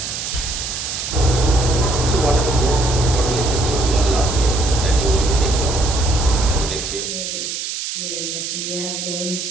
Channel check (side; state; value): right; noise; hiss, 5 dB below the sound